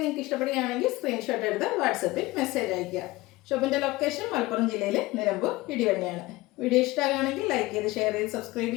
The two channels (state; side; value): quieter; right; 20.0 dB